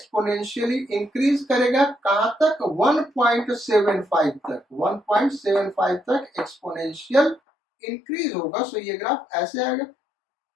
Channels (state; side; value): drops out; right; at 7.4 s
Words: इंक्रीज करेगा, कहां तक, 1.75 तक। 1.75 तक एक्सपोनेंशियल इंक्रीज होगा। सो ये ग्राफ ऐसे आएगा।